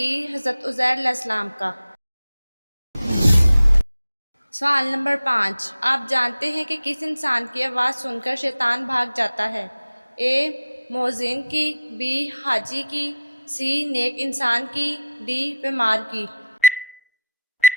حضرت عزیر علیہ السلام کا۔ سوال نمبر 5، آپ جانتے ہیں کہ کس انسان کی آواز سن کر شیطان بھاگ جاتا ہے؟ اے مؤذن کی، بی حاجی کی، سی نیک انسان کی، ڈی بیمار کی۔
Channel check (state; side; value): inverted; both; correlation -0.78